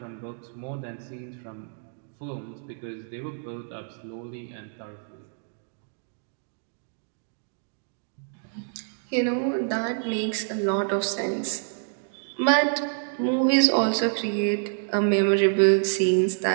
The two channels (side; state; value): left; silent; 60 dB below the other